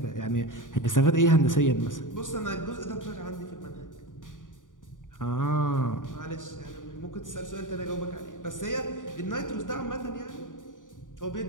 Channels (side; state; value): right; late; 0.88 ms